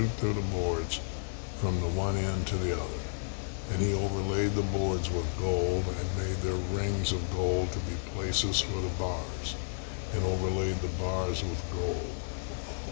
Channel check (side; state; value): right; silent; digital silence